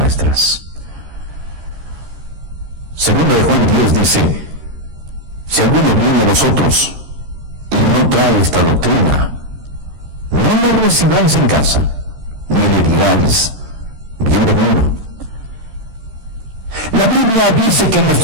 Segundo de Juan 10 dice, si alguno viene a vosotros y no trae esta doctrina, no lo recibáis en casa, ni le digáis, bienvenido. La Biblia dice que en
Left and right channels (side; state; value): left; late; 13 ms